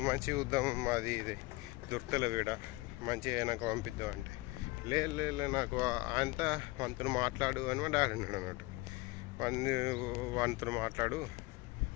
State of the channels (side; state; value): right; quieter; 21.7 dB